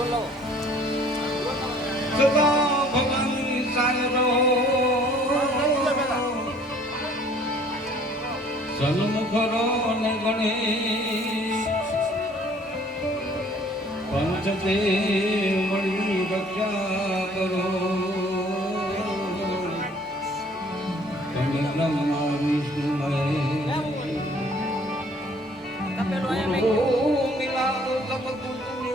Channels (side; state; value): both; normal; correlation 0.56